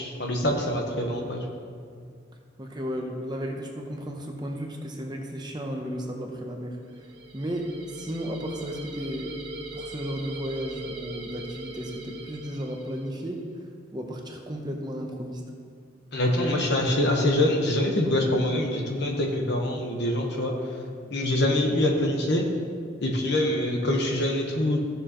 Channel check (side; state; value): both; normal; correlation 0.52